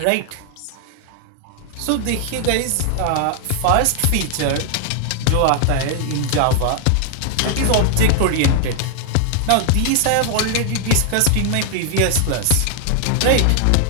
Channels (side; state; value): both; different; correlation 0.00